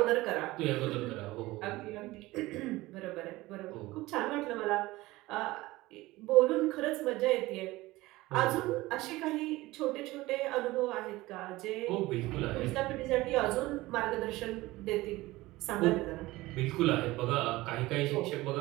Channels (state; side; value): quieter; left; 19.2 dB